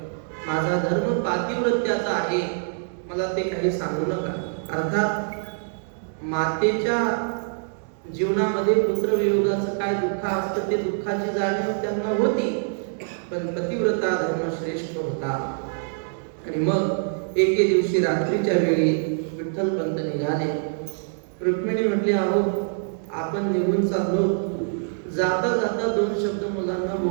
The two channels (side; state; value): left; silent; digital silence